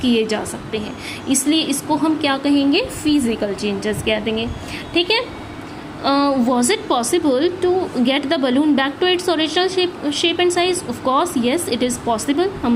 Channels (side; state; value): both; identical; correlation 1.00